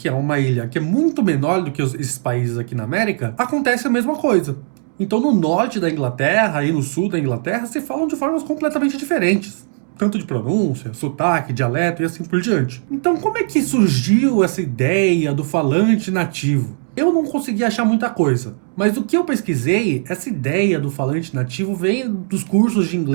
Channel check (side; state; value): left; silent; digital silence